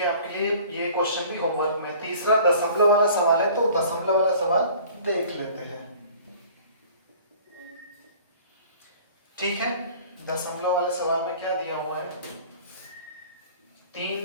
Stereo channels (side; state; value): both; inverted; correlation -0.49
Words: है, आपके लिए ये क्वेश्चन भी होमवर्क में। तीसरा दशमलव वाला सवाल है, तो दशमलव वाला सवाल देख लेते हैं। ठीक है, दशमलव वाले सवाल में क्या दिया हुआ है?